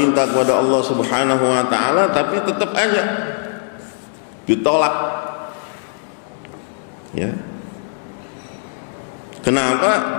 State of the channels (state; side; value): silent; right; digital silence